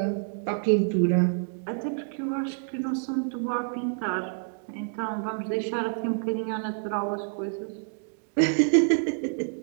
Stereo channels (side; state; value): left; silent; digital silence